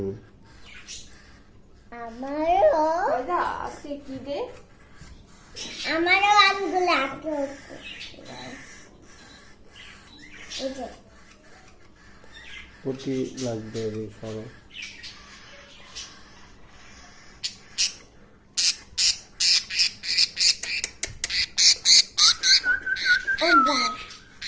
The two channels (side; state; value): both; identical; correlation 1.00